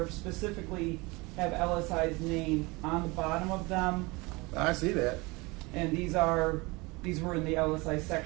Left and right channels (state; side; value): quieter; left; 24.8 dB